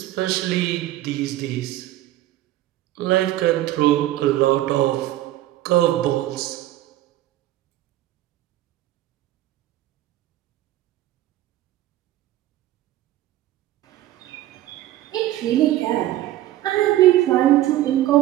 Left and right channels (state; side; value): quieter; left; 14.6 dB